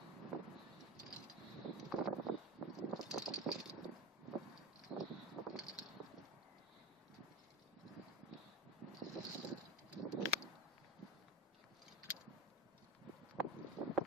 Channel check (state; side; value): normal; both; correlation 0.28